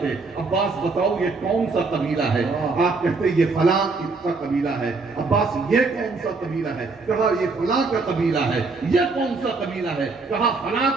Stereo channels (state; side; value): quieter; left; 4.0 dB